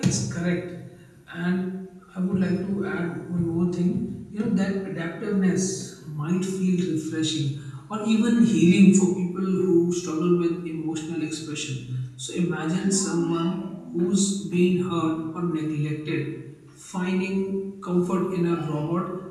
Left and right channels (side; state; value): both; identical; correlation 1.00